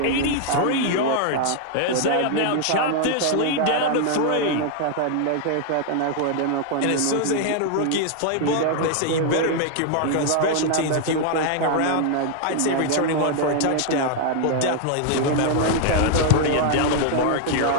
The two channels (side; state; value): both; different; correlation 0.00